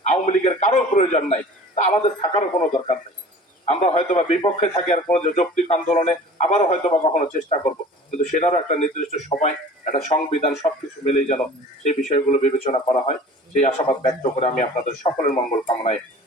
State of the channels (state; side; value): normal; both; correlation 0.44